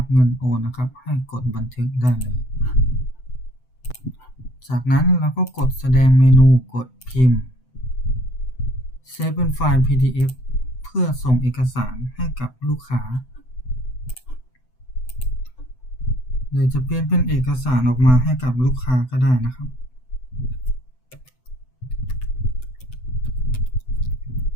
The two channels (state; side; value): late; right; 7.9 ms